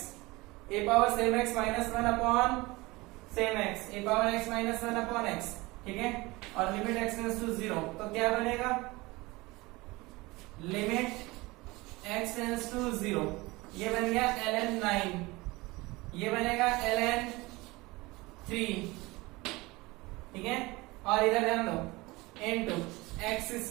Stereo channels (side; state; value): left; quieter; 22.2 dB